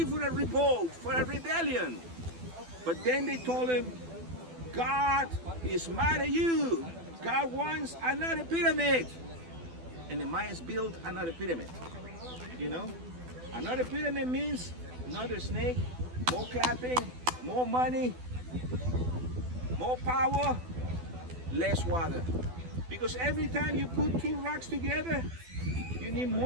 for a revolt, for a rebellion. But then they told him, God is mad at you. God wants another pyramid. And the Mayans built another pyramid. You know? Another pyramid means another snake, more clapping, more money, more power, less water. Because every time you put two rocks together, you need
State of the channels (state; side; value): late; left; 12 ms